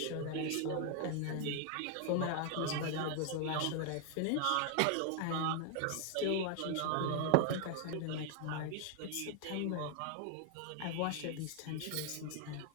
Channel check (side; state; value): both; different; correlation 0.00